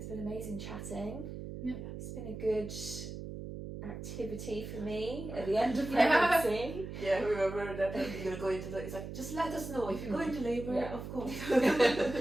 been amazing chatting. Yeah. It's been a good activity for me at the end of pregnancy. Yeah, we were worried that you're going to go into it's like, just let us know if you go into labour, of course.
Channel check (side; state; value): right; noise; hum, 8 dB below the sound